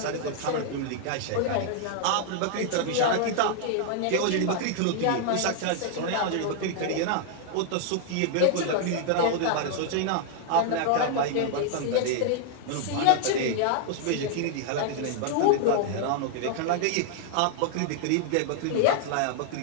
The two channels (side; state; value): both; different; correlation 0.00